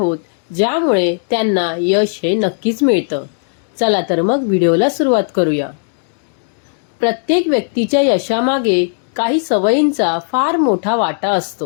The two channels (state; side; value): silent; right; digital silence